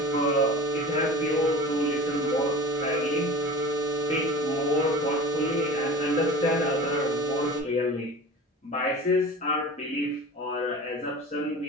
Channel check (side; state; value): both; normal; correlation 0.36